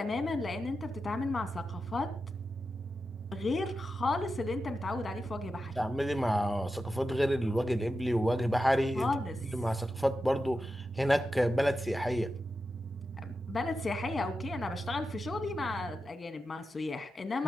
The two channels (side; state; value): both; normal; correlation 0.90